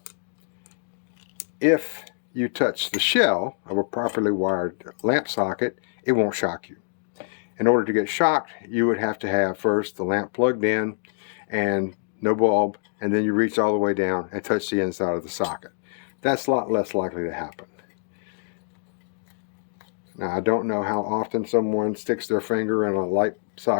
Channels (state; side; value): silent; right; digital silence